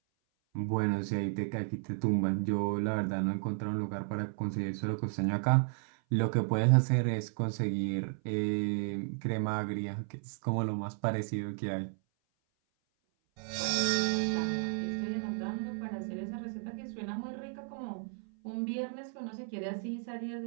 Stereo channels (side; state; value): left; silent; 55 dB below the other